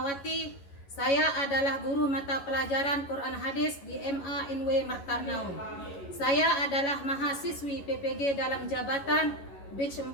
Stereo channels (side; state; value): right; late; 11 ms